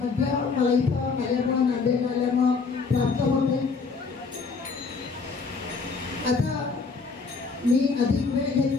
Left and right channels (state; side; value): quieter; right; 4.7 dB